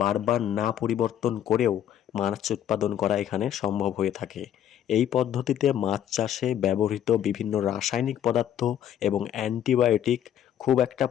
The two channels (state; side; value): quieter; right; 10.5 dB